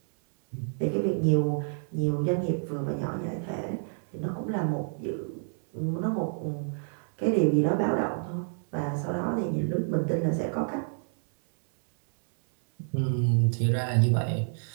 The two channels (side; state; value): left; silent; 59 dB below the other